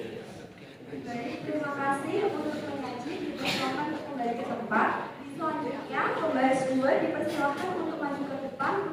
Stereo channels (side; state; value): both; identical; correlation 1.00